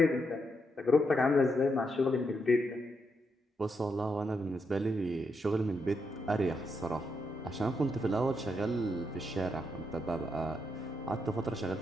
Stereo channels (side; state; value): both; normal; correlation 0.80